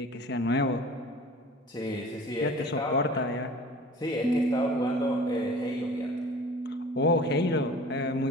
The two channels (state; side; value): normal; both; correlation 0.44